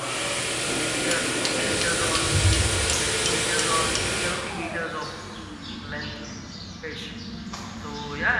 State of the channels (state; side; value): identical; both; correlation 1.00